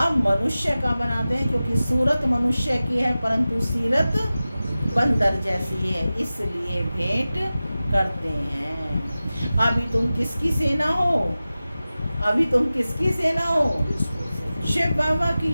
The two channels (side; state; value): both; inverted; correlation -0.96